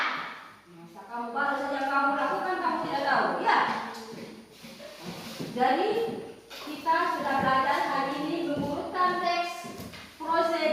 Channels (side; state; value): both; identical; correlation 1.00